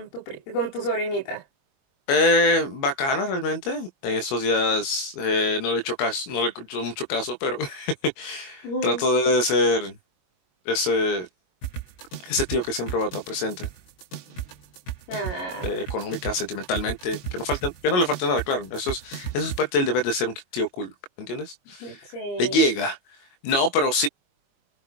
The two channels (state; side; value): late; right; 22 ms